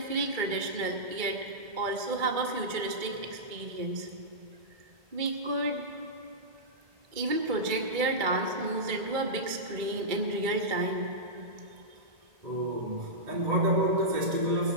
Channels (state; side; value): late; left; 2.2 ms